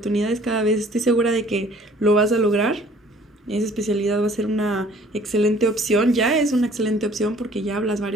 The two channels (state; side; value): normal; both; correlation 0.55